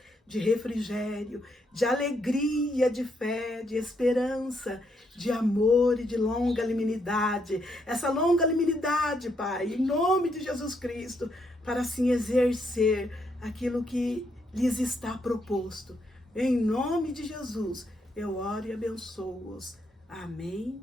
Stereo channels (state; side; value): normal; both; correlation 0.76